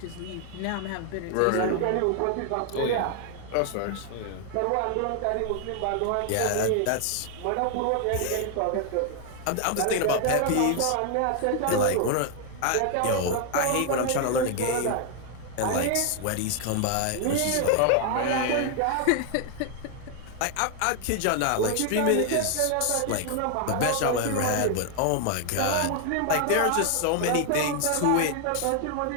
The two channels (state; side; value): different; both; correlation 0.00